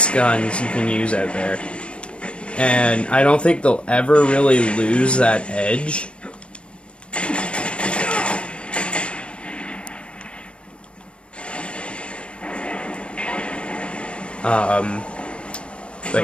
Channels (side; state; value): right; late; 0.058 ms